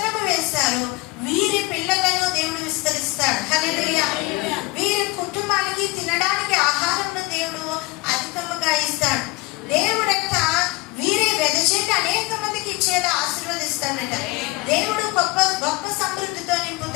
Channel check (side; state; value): right; quieter; 23.1 dB